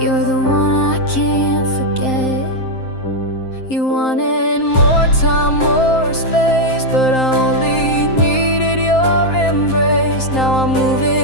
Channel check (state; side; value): late; right; 7.7 ms